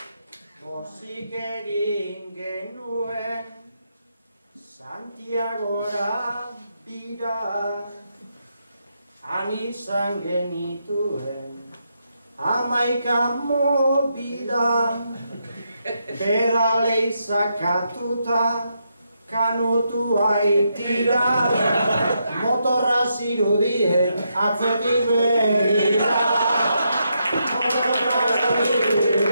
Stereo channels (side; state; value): both; inverted; correlation -0.81